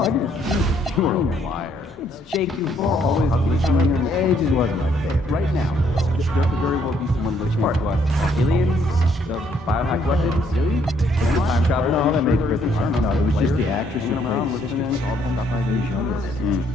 I didn't. You were a liar. It's Jake Duval, always glitching in your age. It just wasn't my favorite. Right now, there could very well be someone listening to us. Aliens, the biohack weapons, the time travel. No, that makes perfect sense. No, it was just the actress who played Sister. All the stuff I was younger.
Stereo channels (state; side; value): normal; both; correlation 0.68